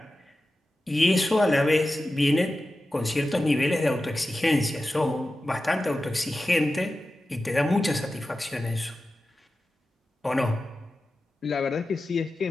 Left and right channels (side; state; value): both; normal; correlation 0.93